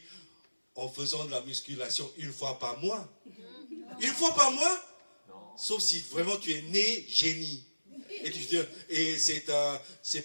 en faisant de la musculation une fois par mois. Une fois par mois? Non. Sauf si vraiment tu es né génie. Et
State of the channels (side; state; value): both; inverted; correlation -1.00